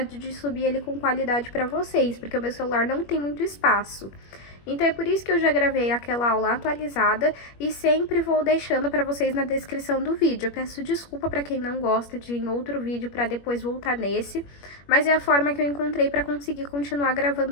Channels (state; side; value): late; right; 21 ms